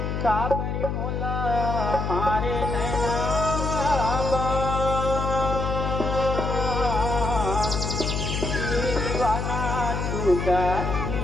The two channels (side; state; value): left; noise; hum, 2 dB below the sound